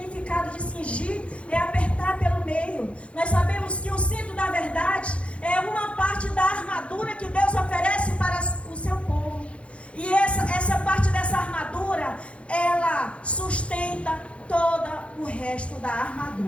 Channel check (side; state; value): right; late; 0.061 ms